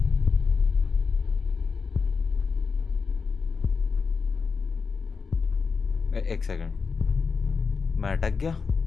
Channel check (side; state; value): right; quieter; 5.1 dB